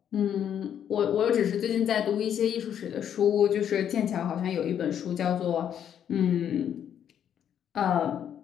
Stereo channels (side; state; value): right; quieter; 9.3 dB